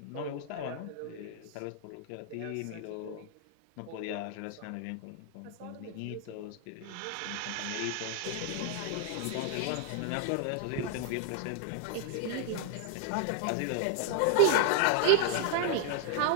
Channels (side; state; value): both; different; correlation 0.00